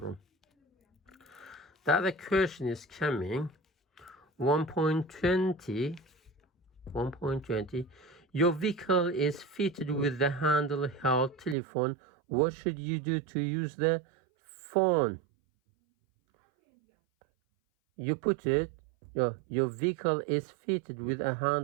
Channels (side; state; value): left; drops out; at 11.6 s